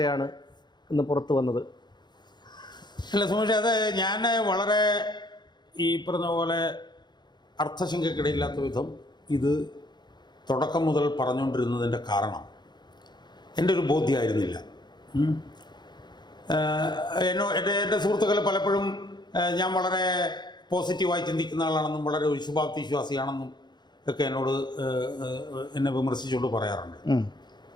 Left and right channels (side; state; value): right; late; 0.21 ms